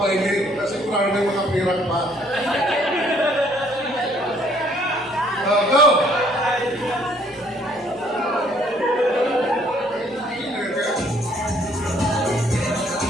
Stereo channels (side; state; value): both; normal; correlation 0.63